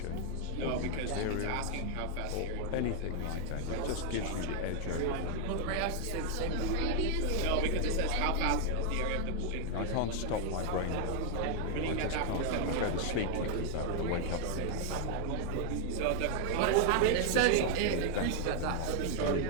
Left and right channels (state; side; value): different; both; correlation 0.00